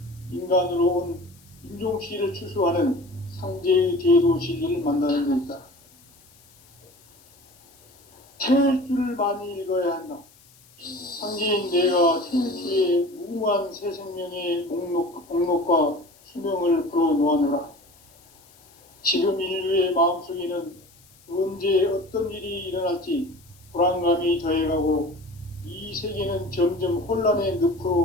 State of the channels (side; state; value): left; noise; hiss, 28 dB below the sound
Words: 인간으로 온 인종시를 추수하는 상제의 대도 진리를 만나는 데 있다. 태일주를 많이 읽어야 한다. 상제인 내가 태일주의 무궁한 새 생명의 목록과 수명을 불어놓아노라. 지금 인류의 마음속에는 언제 어떤 일이 일어날지 불안감이 더해가고 이 세계는 점점 혼란의